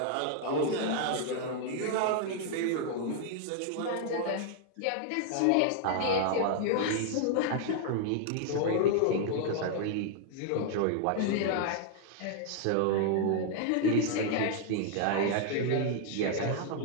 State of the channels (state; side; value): different; both; correlation 0.00